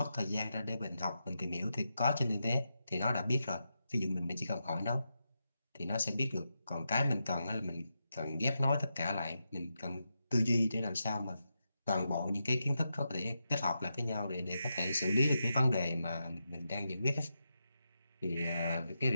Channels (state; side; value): inverted; both; correlation -0.87